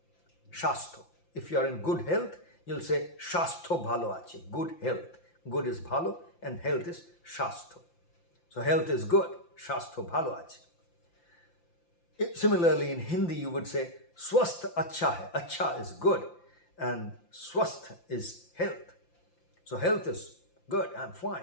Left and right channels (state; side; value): late; right; 5.8 ms